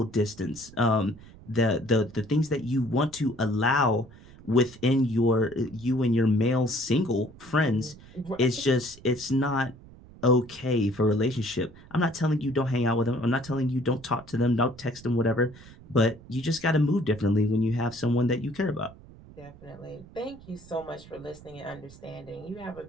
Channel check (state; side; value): noise; right; rumble, 21 dB below the sound